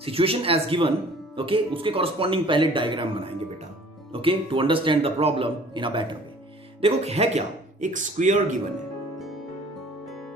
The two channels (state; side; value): normal; both; correlation 0.51